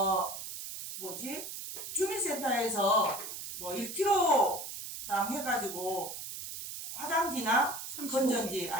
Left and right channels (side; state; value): right; noise; hiss, 8 dB below the sound